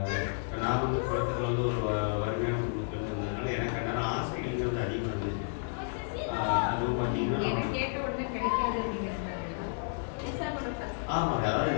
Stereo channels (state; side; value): silent; right; digital silence